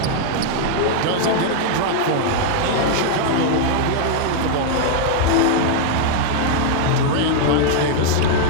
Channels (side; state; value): both; different; correlation 0.00